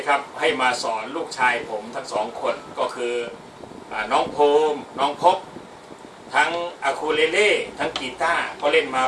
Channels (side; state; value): both; identical; correlation 1.00